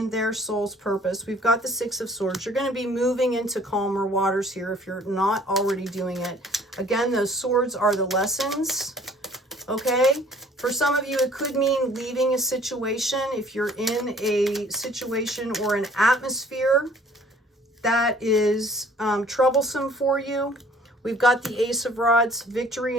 their soul's purpose? We've got the Six of Swords. You're going to be moving into calmer waters here if you're not already doing it. Again, those swords are the lessons. Okay. For some of you, it could mean leaving a situation. If you're in a situation or an atmosphere that is troublesome for you, we've got the Ace of Rods, victory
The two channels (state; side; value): normal; both; correlation 0.55